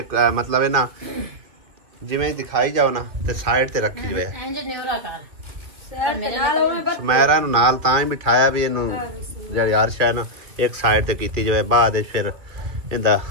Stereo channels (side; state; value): left; late; 2.7 ms